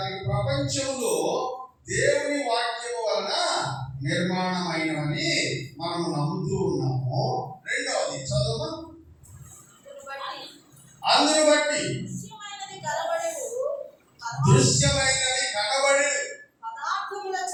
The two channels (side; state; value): both; identical; correlation 1.00